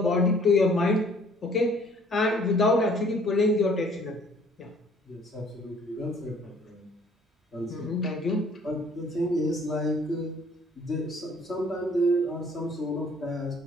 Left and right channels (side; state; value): both; normal; correlation 0.57